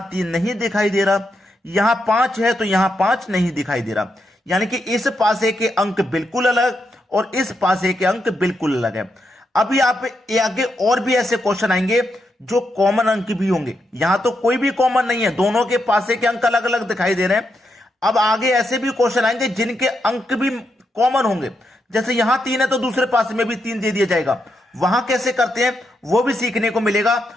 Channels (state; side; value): normal; both; correlation 0.83